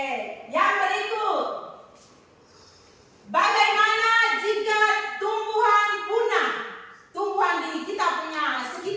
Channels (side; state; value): both; identical; correlation 1.00